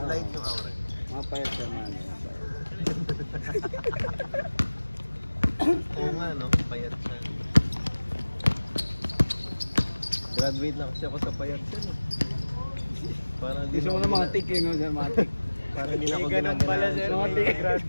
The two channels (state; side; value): inverted; both; correlation -1.00